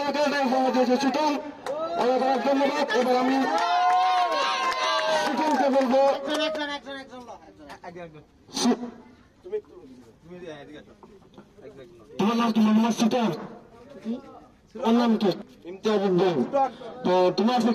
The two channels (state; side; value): identical; both; correlation 1.00